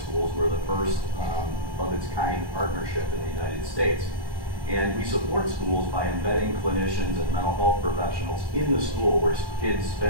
were the first of its kind partnership in the United States. And we support schools by embedding clinicians and mental health professionals in the school where kids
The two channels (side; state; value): right; late; 1.2 ms